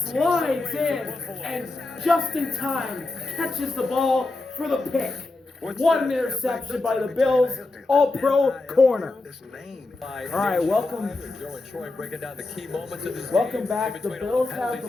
slides in and just in time catches the ball for the pick. One interception by the Bills. All-pro corner. All right, welcome. Joe and Troy breaking down the key moments of this Welcome game. back. In The between all Bills penalties have the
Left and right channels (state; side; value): quieter; right; 3.2 dB